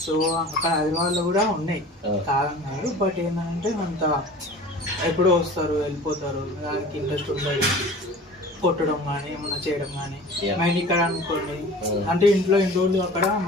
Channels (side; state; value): both; normal; correlation 0.41